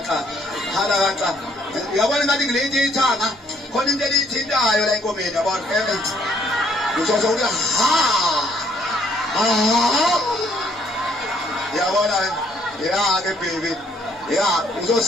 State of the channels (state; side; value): normal; both; correlation 0.65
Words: uyabona ngathi ngilethi ithanga khona into elithintayo la enkomeni yabona uzozo uthi yabona ke baby